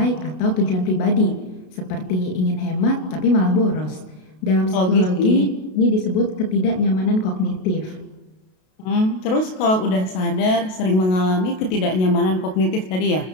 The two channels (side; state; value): right; late; 32 ms